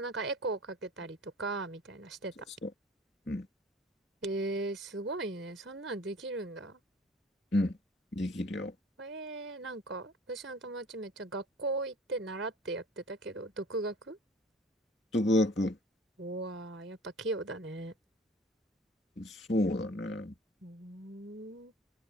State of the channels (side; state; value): both; normal; correlation 0.48